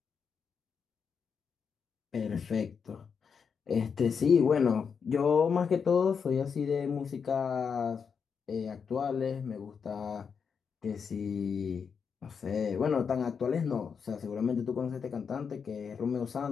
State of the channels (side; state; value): right; quieter; 6.3 dB